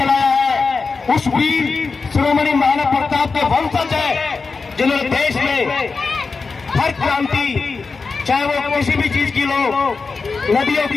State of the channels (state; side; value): quieter; right; 4.5 dB